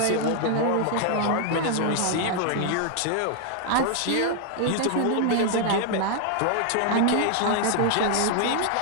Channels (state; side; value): different; both; correlation 0.00